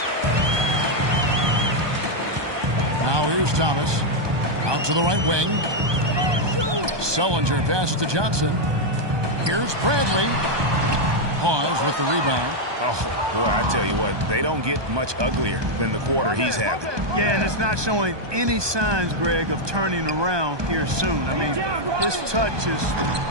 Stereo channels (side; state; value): left; late; 1.2 ms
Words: Now here's Thomas. Out to the right wing. Sullinger passes to Johnson. Here's Bradley. Hawes with the rebound. Oh, boy, I tell you what, they don't get much uglier than the quarter he's having. Yeah, and it's not showing any signs, Greg, of turning around here soon. I mean, his touch is